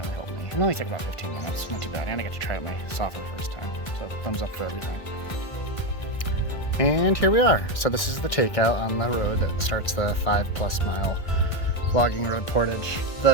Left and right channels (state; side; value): late; right; 1.5 ms